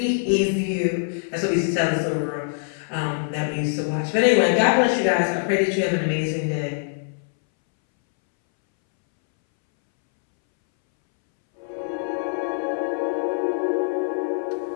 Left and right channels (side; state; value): right; silent; 63 dB below the other